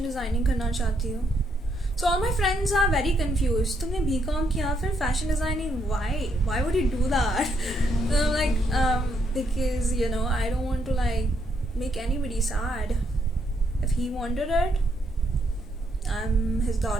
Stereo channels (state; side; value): normal; both; correlation 0.75